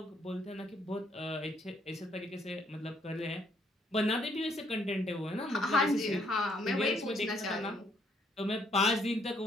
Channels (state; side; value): normal; both; correlation 0.68